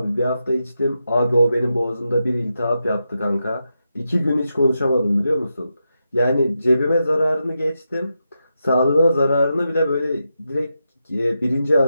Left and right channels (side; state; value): both; inverted; correlation -0.87